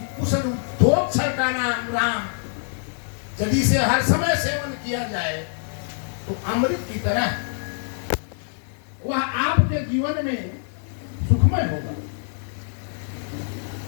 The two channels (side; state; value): right; silent; 62 dB below the other